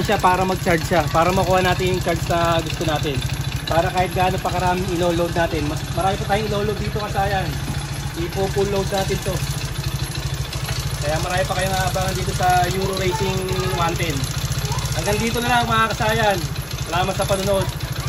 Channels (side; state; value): both; identical; correlation 1.00